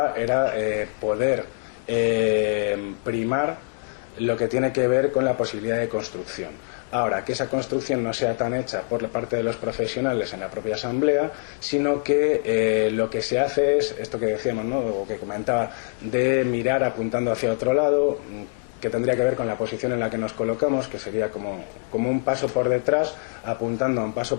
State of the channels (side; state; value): right; silent; digital silence